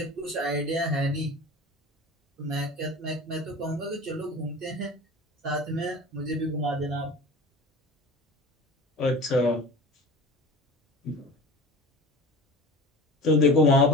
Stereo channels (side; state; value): both; normal; correlation 0.36